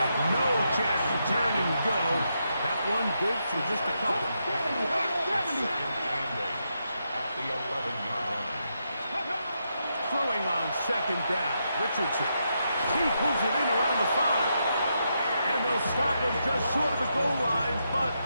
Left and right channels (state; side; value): inverted; both; correlation -0.82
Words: no chance to turn and go. That one good for just a couple. Second and 8 at the 11-yard line. Throwing on second down. Richardson. He pulls it in around the 5. And they'll stop him just short of the goal line, but